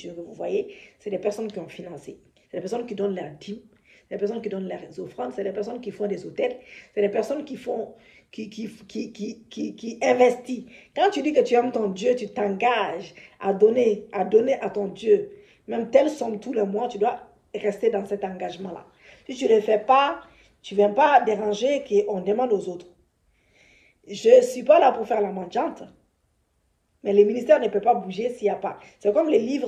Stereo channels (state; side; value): identical; both; correlation 1.00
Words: que vous voyez, c'est des personnes qui ont financé. C'est des personnes qui donnent leurs dîmes. C'est des personnes qui donnent leurs offrandes. C'est des personnes qui font des hôtels. C'est des personnes qui font... Qui investit. Quand tu dis que tu aimes ton Dieu, tu t'engages à donner à ton Dieu. Même telle somme tous les mois, tu dois rester dans cet engagement-là. Si tu ne le fais pas, tu ne viens pas déranger qu'on demande aux autres. Je ne suis pas là pour faire la mendiante. Mais le ministère ne peut pas bouger s'il n'y a pas. C'est comme les